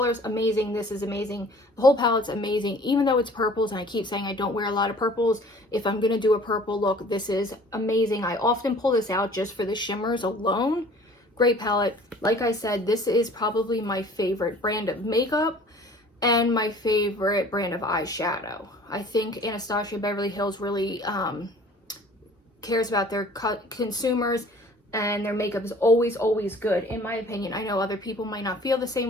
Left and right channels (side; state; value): both; normal; correlation 0.50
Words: amazing. This is amazing. The whole palette's amazing, even though it's purples, and I keep saying I don't wear a lot of purples. If I'm going to do a purple look, this is amazing. I often pull this out just for the shimmers alone. Great palette. Like I said, this is probably my favorite brand of makeup and my favorite brand of eyeshadow. I think Anastasia Beverly Hills really cares about their consumers, and their makeup is always, always good, in my opinion. I know other people might not feel the